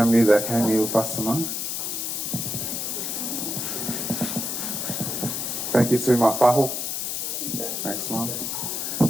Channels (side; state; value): left; noise; hiss, 2 dB below the sound